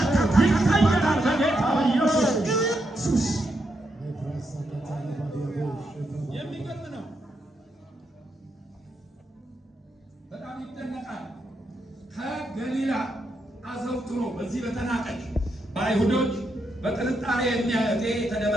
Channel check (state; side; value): normal; both; correlation 0.82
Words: ይቀየራል በጌታ በኢየሱስ። የሚገርም ነው። በጣም ይደነቃል። ከገሊላ አዘውትሮ በዚህ በተናቀች በአይሁዶች በጥርጣሬ